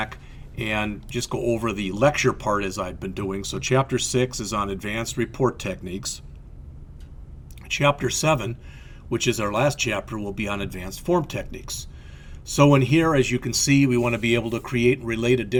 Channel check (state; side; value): identical; both; correlation 1.00